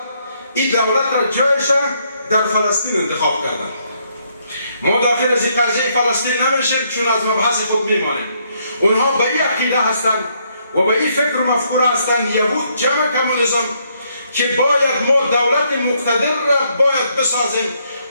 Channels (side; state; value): both; inverted; correlation -0.72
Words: این دولت را جایش در فلسطین انتخاب کردند. ما داخل از این قضیه فلسطین نمیشیم چون از مبحث خود میمانیم. اونها به این عقیده هستند و به این فکر و مفکوره هستند یهود جمع کمونیسم که باید ما دولت مقتدر را باید بسازیم